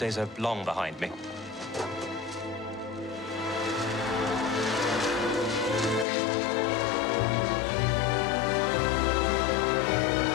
are long behind me.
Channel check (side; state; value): right; drops out; at 6.1 s